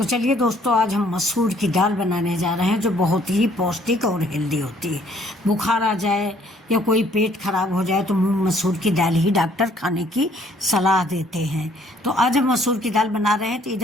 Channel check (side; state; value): both; normal; correlation 0.62